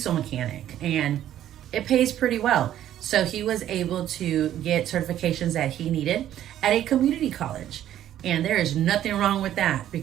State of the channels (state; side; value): quieter; left; 11.7 dB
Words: mechanic, and it pays pretty well. So he was able to get certifications that he needed at a community college. And there is nothing wrong with that,